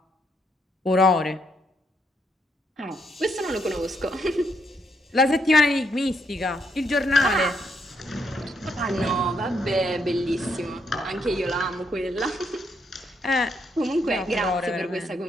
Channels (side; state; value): both; normal; correlation 0.75